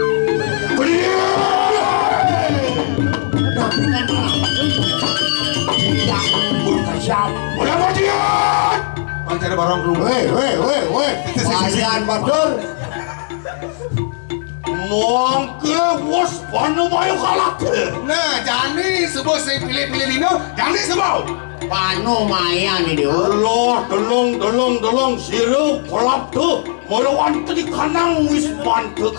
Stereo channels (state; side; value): silent; right; 63 dB below the other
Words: Tapi kan tidak berkesiap. Udah bajian. Pancari barang keluar. Weh. Kalian Badur. Mongke bos panu mayu kalak. Nah, jani sebab saya pilih-pilih Lino, jani sebab. Panu maya nih dia. Allah dolong sirup kolak tuh. Marawan tadi kanang wis mantu